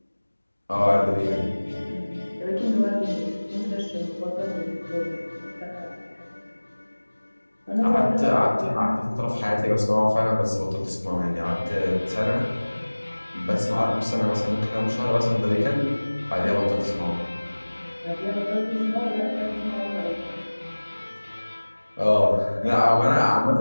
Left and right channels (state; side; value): inverted; both; correlation -1.00